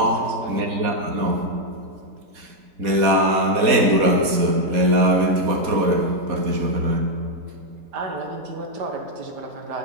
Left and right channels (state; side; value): late; left; 4.2 ms